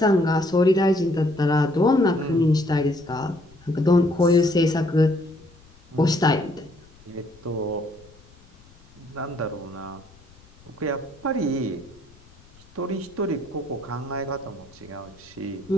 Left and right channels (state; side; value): noise; left; rumble, 27 dB below the sound